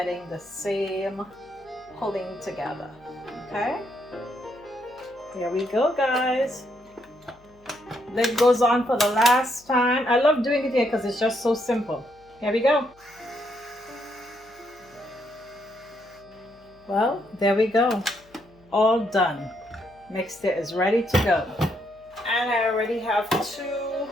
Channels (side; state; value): left; noise; hum, 29 dB below the sound